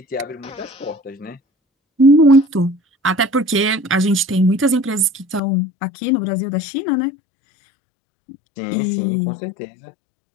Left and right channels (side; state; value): right; drops out; at 5.4 s